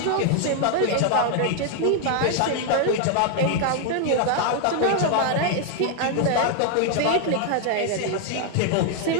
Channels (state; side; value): different; both; correlation 0.00